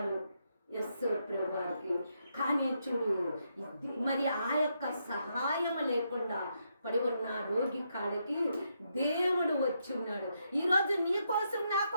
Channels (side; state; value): both; inverted; correlation -0.80